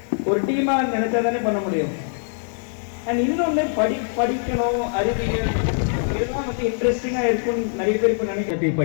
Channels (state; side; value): silent; right; digital silence